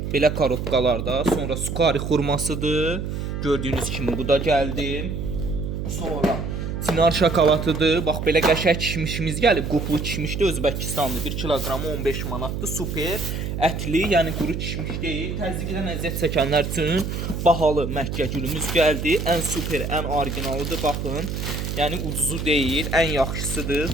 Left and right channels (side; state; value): right; noise; hum, 4 dB below the sound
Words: Belə korobkalarda. Sonra sukari xurmasıdır. Gördüyünüz kimi bu da gəldi. Sonra Sinar şokoladıdır. Bax belə qəşəng kişmişimiz gəlib. Qoplu kişmişdir, Özbəkistanlı. 1 kiloqramı 15 manatdır. Super ətli, yəni quru kişmiş deyil. Təzyiqdən əziyyət çəkənlər üçün bahalı Məkkə gülümüz gəldi. Ən super, ən orijinalıdır. Baxın. Yəni ucuzu deyil, ən